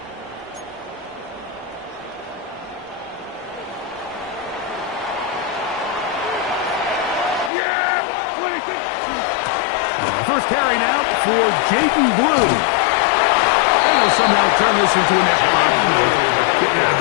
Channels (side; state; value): right; drops out; at 7.5 s